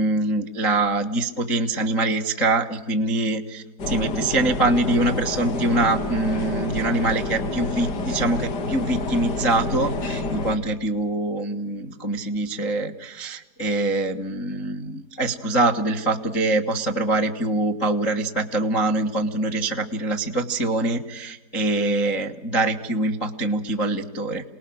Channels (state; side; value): late; right; 3.9 ms